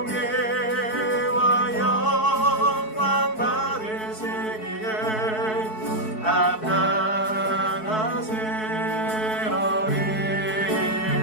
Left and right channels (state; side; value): late; right; 4.6 ms